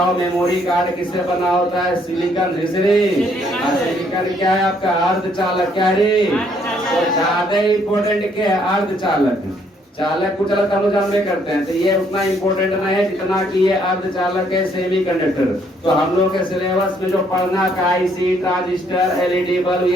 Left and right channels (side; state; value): both; normal; correlation 0.67